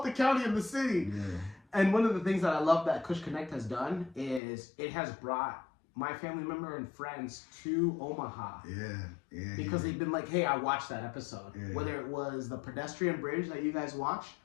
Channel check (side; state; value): right; drops out; at 4.4 s